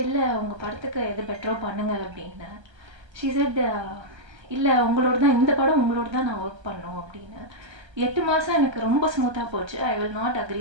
இல்லை உங்கள் படத்துக்கு எது பெட்டரோ பண்ணுங்க அப்படின்னு. ஷி செட் இல்லை உங்களோட தான் இந்த படம் உங்களோட தான் நான் ஒர்க் பண்ணோம் அப்படின்னு. 8 மாதம் எனக்கு ரொம்ப ஸ்மூத்தாக போச்சு. I will not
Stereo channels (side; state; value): left; late; 1.3 ms